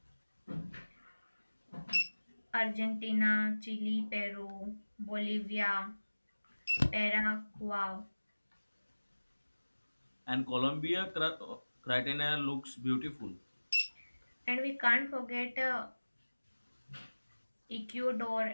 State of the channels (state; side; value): inverted; both; correlation -1.00